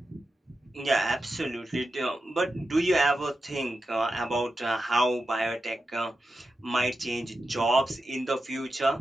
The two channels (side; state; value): both; normal; correlation 0.90